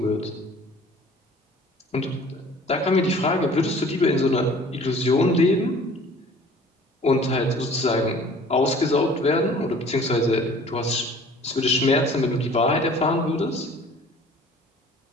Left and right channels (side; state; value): both; normal; correlation 0.49